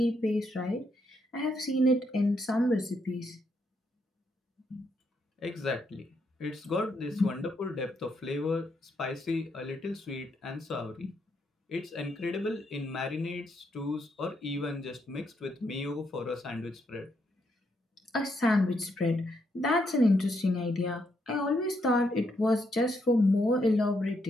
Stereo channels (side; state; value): both; normal; correlation 0.77